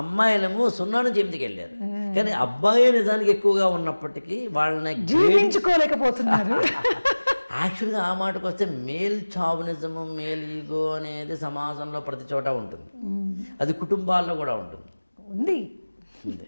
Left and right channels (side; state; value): both; inverted; correlation -1.00